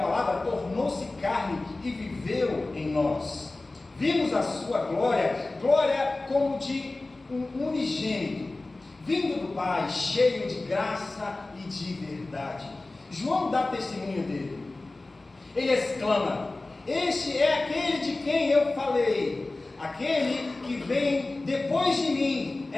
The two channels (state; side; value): quieter; right; 3.1 dB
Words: palavra tornou-se carne e viveu em nós. Vimos a sua glória, glória como de um unigênito, vindo do Pai, cheio de graça e de verdade. João dá testemunho dele. Ele exclama: este é aquele de quem eu falei. Aquele que vem depois de mim